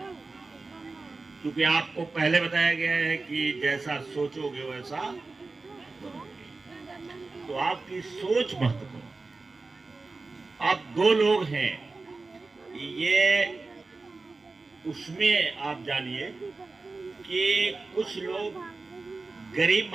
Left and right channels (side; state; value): left; quieter; 3.7 dB